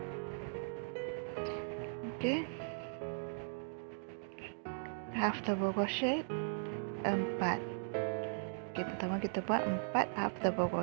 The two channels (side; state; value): left; silent; digital silence